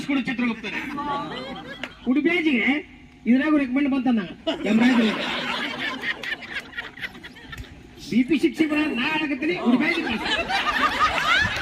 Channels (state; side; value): identical; both; correlation 1.00